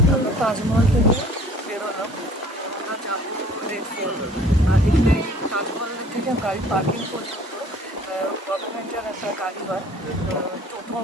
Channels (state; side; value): normal; both; correlation 0.52